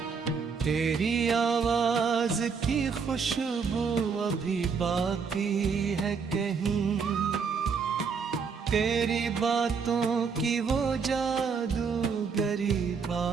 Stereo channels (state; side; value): quieter; left; 5.6 dB